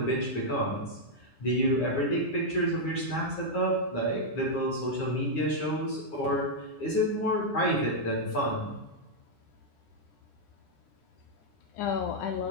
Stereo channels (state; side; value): late; right; 9.9 ms